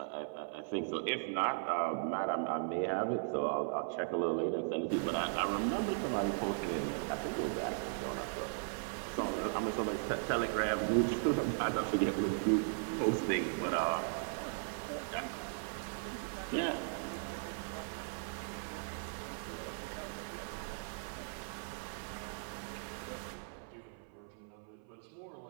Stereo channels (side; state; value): left; silent; 53 dB below the other